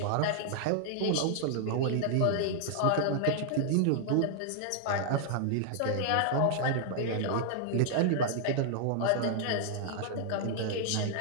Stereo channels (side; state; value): both; different; correlation -0.01